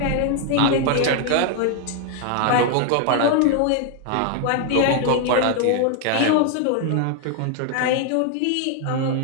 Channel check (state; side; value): different; both; correlation 0.00